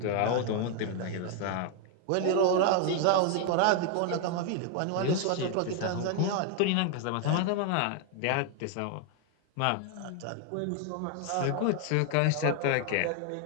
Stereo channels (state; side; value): different; both; correlation 0.00